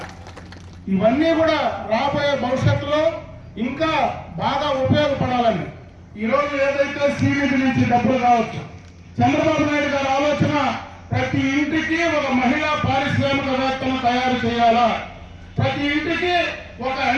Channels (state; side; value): identical; both; correlation 1.00